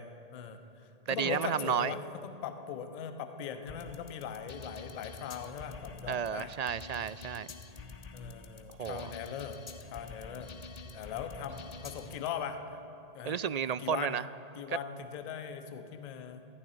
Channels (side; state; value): left; late; 1.8 ms